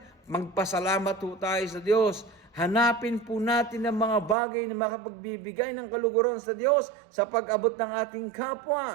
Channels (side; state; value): left; drops out; at 4.4 s